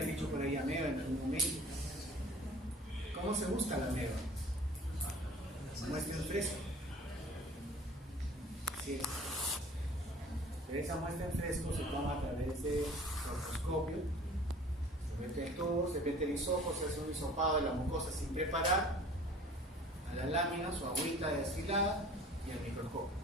dicho por ahí ameba en algún momento. ¿Cómo se busca la ameba? Muestra en fresco. Sí. Pero esa muestra en fresco se toma a través de proctoscopio. Se mete el tubo, se mete el hisopo, se hace un hisopado de la mucosa sin preparar, a las láminas o agüita destilada y al microscopio.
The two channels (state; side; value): normal; both; correlation 0.47